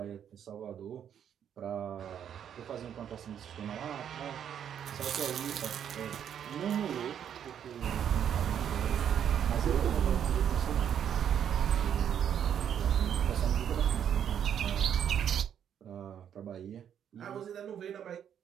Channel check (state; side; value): quieter; left; 9.0 dB